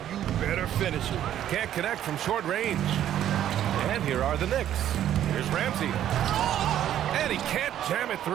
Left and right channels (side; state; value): left; quieter; 11.2 dB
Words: you better finish it. Can't connect from short range. And here are the Knicks. Here's Ramsey. And he can't jam it